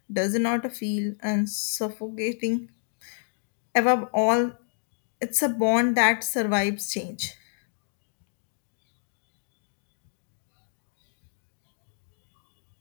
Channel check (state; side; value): silent; right; digital silence